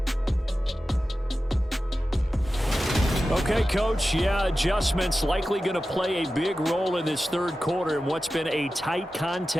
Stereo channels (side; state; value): both; normal; correlation 0.94